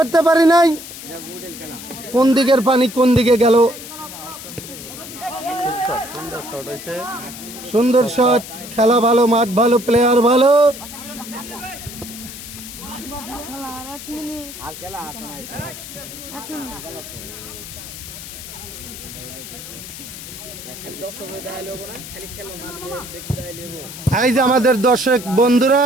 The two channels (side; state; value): left; noise; hiss, 12 dB below the sound